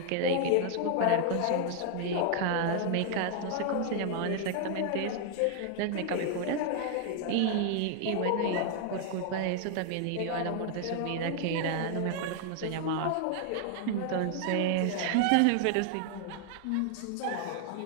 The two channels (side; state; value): both; different; correlation 0.00